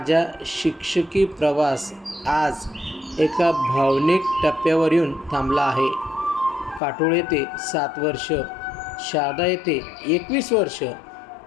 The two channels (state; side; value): drops out; right; at 6.8 s